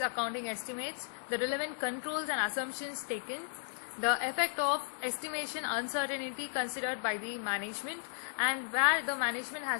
estimates, the relevant controls and assumptions taken, the effect of estimation uncertainty considered by the management, and where the management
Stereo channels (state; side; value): silent; right; digital silence